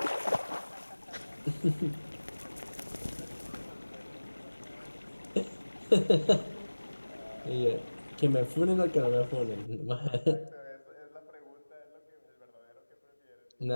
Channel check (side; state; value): both; inverted; correlation -1.00